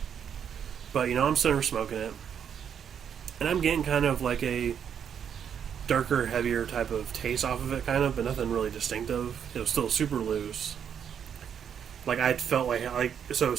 But, I'm sitting there smoking it. And I'm getting kind of like a darker, heavier type of taste off of it, kind of, but nothing really distinctive. It was still super loose. Like, I felt like so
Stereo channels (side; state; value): left; quieter; 8.2 dB